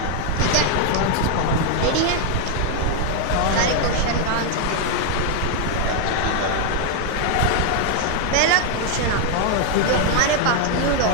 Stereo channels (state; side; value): different; both; correlation 0.00